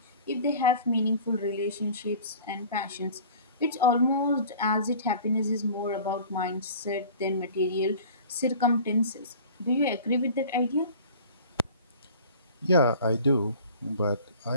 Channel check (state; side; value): inverted; both; correlation -0.44